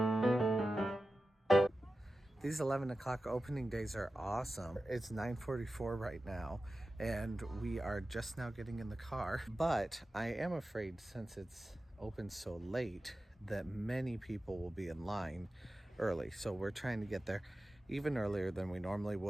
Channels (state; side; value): normal; both; correlation 0.94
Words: These 11 o'clock opening days are awesome. It's 9:44 right now, and we are just now getting in the car. But I am afraid, since it's open so late, that many people will be in line early. So we're trying to get there even earlier than we normally